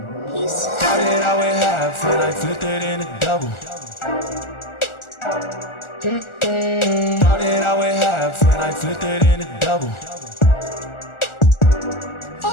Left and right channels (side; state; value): right; late; 1.4 ms